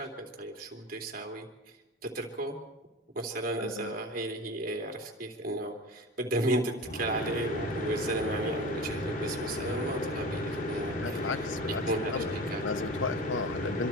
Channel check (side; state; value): both; normal; correlation 0.32